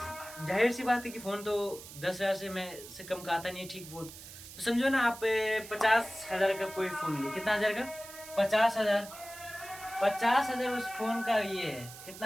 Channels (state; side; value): noise; right; hiss, 15 dB below the sound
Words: जाहिर सी बात है कि फ़ोन तो 10,000 से कम का आता नहीं है, ठीक फ़ोन। तो समझो ना आप 50,000 का कोई फ़ोन लिए, कितना हज़ार का, 50,000, 50,000 उस फ़ोन का ये है,